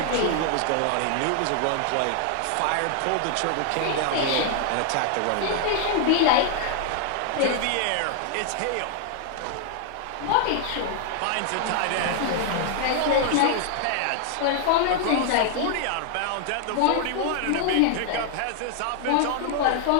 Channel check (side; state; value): both; different; correlation 0.00